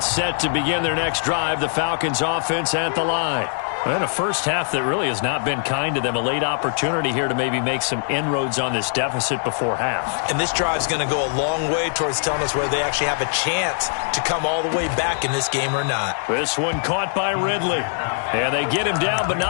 set to begin their next drive, the Falcons offense at the line. And a first half that really has not been kind to them. A late opportunity here to maybe make some inroads on this deficit before half. And this drive's going to go a long way towards telling us whether they actually have a chance to come all the way back in this game or not. This one caught by Ridley. And they get him down, but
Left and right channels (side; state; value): right; silent; digital silence